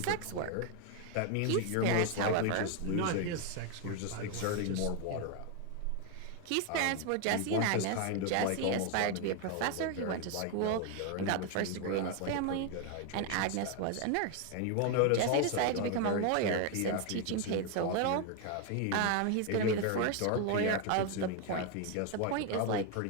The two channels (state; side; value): different; both; correlation 0.01